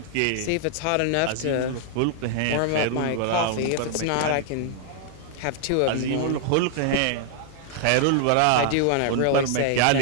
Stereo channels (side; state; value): both; different; correlation 0.00